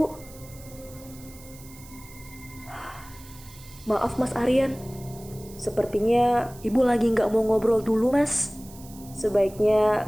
Maaf, Mas Aryan. Sepertinya ibu lagi nggak mau ngobrol dulu, Mas. Sebaiknya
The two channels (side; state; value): right; noise; hiss, 20 dB below the sound